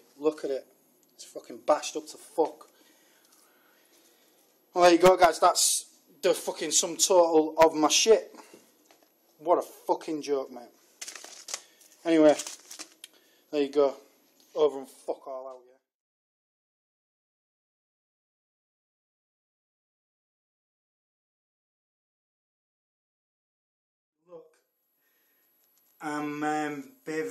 Look at it. It's fucking bashed up to fuck. Well, there you go, guys. That's the fucking sum total of my shit. What a fucking joke, mate. Anyway, there you go. Over and fuck all out, yeah. Look, I'm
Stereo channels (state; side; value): identical; both; correlation 1.00